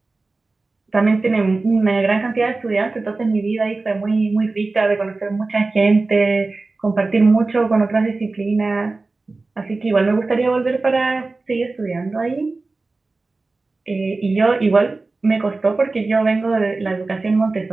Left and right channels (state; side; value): quieter; left; 3.5 dB